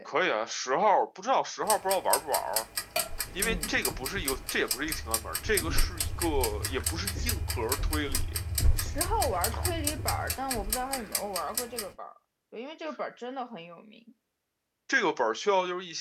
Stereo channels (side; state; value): both; identical; correlation 1.00